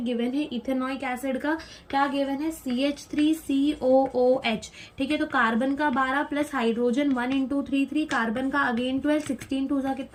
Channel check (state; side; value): identical; both; correlation 1.00